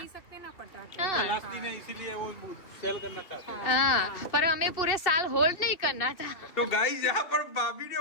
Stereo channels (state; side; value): late; right; 2.8 ms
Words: सकते ना पटाखे। हाँ। लास्ट दिन है इसीलिए वो सेल करना चाहते हैं। हाँ, पर हमें पूरे साल होल्ड नहीं करना था। तो गाइस यहाँ पर भाभी ने